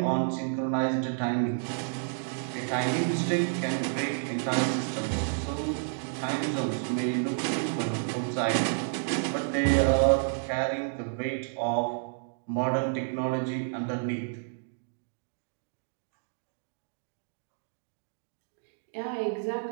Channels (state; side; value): silent; left; digital silence